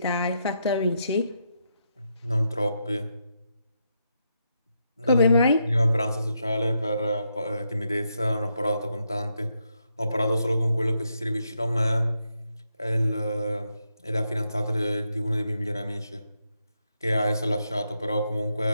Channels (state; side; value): inverted; both; correlation -0.81